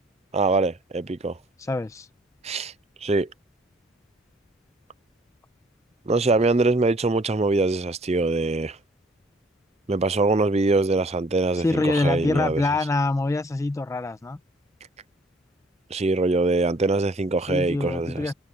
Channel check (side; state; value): both; normal; correlation 0.58